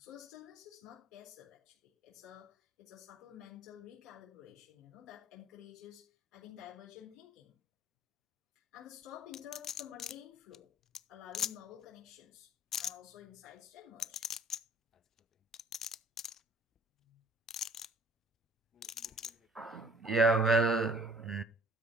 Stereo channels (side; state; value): both; normal; correlation 0.53